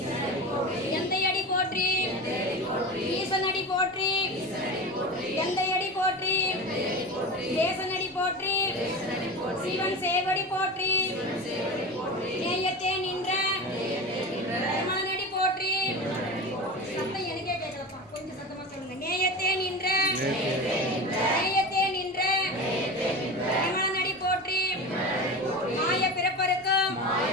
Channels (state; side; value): normal; both; correlation 0.28